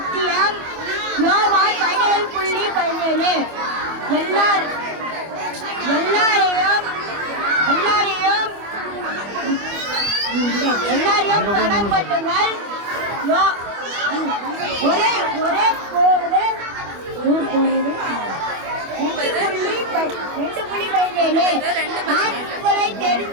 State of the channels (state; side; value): late; left; 25 ms